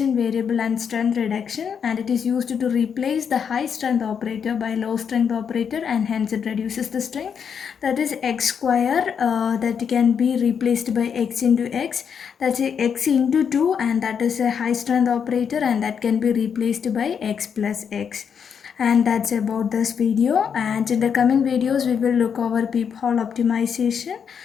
variable and strength reduction, and it is used to replace the high strength operator by low strength operator, and hence it reduces the strength. That is x square, that can be replaced by x into x, that's a x into 2, and that is a high strength operator, and that can be replaced by x plus x. And that's about this video, and in the coming videos we will look over peephole optimization.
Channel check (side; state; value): right; quieter; 7.2 dB